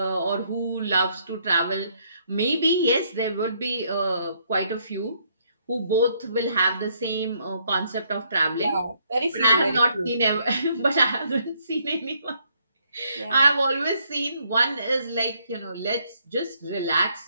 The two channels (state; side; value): inverted; both; correlation -0.70